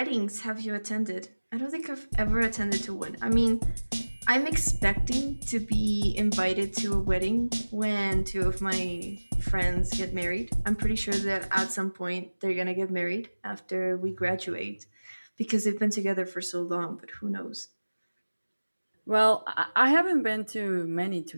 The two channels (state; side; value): inverted; both; correlation -1.00